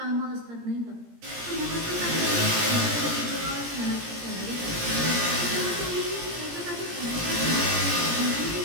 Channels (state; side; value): late; left; 17 ms